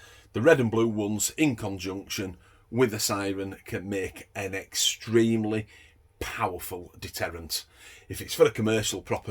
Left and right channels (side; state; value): both; identical; correlation 1.00